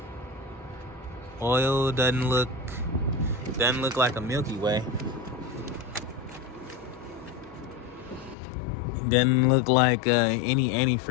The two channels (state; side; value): drops out; right; at 8.3 s